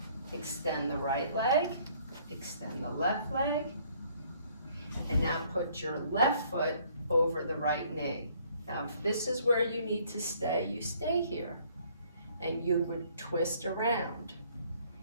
Extend the right leg. Extend the left leg. And now put your left foot over the right knee. Now, if this is where you need to stay, you stay here. And you would twist around.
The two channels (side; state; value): both; inverted; correlation -0.62